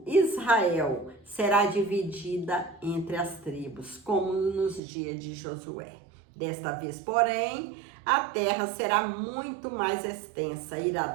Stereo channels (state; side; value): drops out; left; at 4.8 s